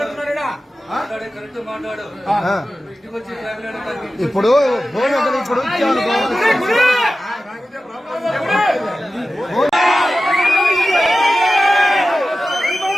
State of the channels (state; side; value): normal; both; correlation 0.94